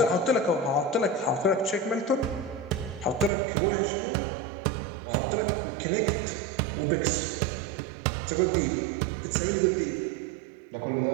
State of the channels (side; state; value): left; drops out; at 3.3 s